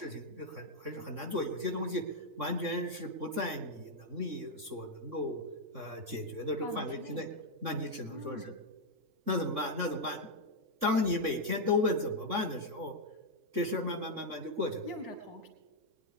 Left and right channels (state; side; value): late; left; 3.6 ms